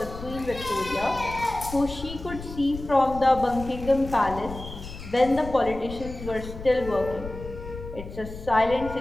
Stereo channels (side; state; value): left; noise; rumble, 11 dB below the sound